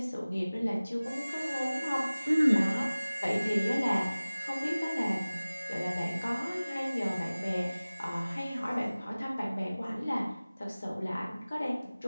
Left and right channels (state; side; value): inverted; both; correlation -0.98